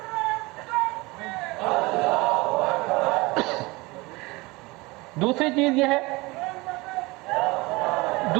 دوسری چیز یہ ہے،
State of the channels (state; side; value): quieter; left; 23.2 dB